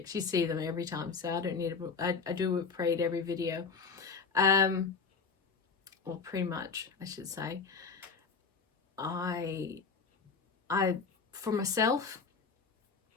You see them every time, so I don't need I do a whip parade every video. Well, pretty much, I should say. For myself,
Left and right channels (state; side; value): quieter; right; 5.0 dB